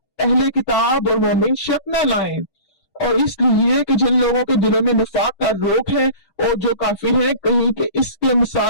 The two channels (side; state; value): right; late; 6.2 ms